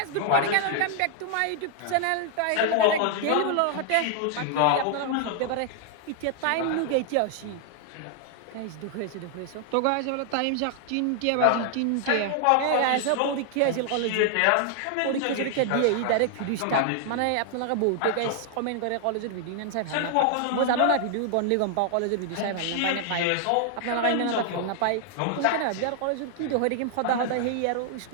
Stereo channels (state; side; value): different; both; correlation 0.00